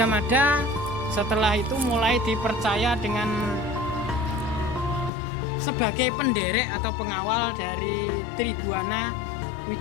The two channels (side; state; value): right; drops out; at 5.1 s